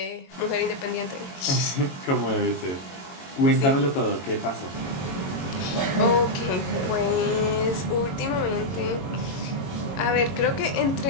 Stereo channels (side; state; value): right; late; 22 ms